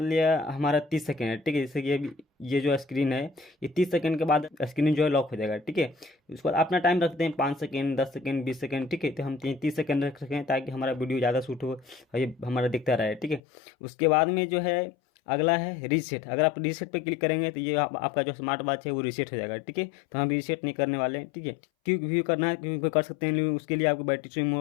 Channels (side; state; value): right; drops out; at 13.4 s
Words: लिया हमारा 30 सेकेंड है। ठीक है, जैसे कि ये जो स्क्रीन है ये 30 सेकेंड के बाद स्क्रीन जो है लॉक हो जाएगा। ठीक है, उसके बाद अपना टाइम रखते हैं 5 सेकेंड, 10 सेकेंड, 20 सेकेंड। ठीक है, तो हम 30 सेकेंड रख सकें ताकि हमारा वीडियो ज़्यादा शूट हो और ये हमारा दिखता रहे। ठीक है, उसके बाद में जो है अगला है रीसेट। अगर आप रीसेट पे क्लिक करेंगे तो ये आपका जो स्मार्ट वॉच है वो रीसेट हो जाएगा। ठीक है, तो हम रीसेट नहीं करने वाले हैं। ठीक है, क्विक व्यू करना है, क्विक व्यू कर सकते हैं, लेकिन उसके लिए आपको बैटरी स्विंग